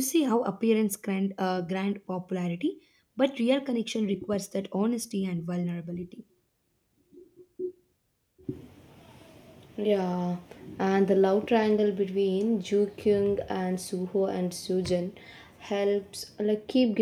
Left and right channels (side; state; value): both; identical; correlation 1.00